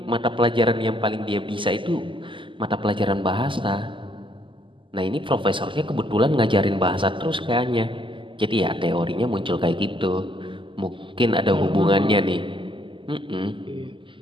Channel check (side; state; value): left; late; 0.25 ms